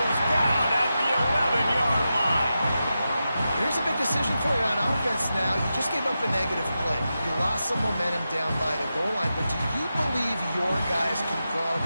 down at the 11-yard line. Here's a big decision for you on offense now. You just gave up a negative play. You lost some momentum down by the goal line, but do you believe your guys can go out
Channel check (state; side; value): inverted; both; correlation -0.90